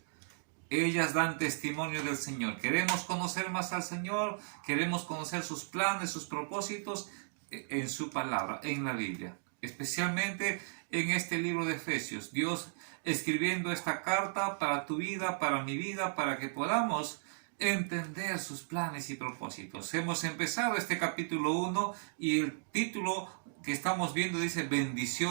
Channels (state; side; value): silent; left; digital silence